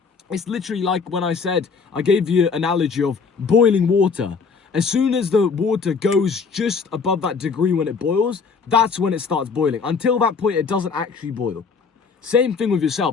it's literally like when I said, I gave you an analogy of boiling water. As soon as the water goes just above that degree when it boils, that's when it starts boiling. Until that point, it doesn't actually boil. Same thing with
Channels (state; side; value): quieter; right; 5.3 dB